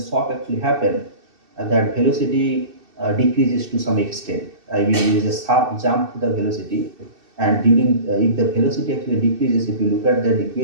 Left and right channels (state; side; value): late; left; 2.6 ms